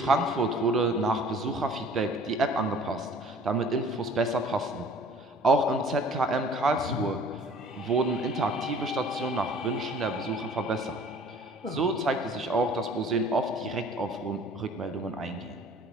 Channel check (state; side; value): normal; both; correlation 0.50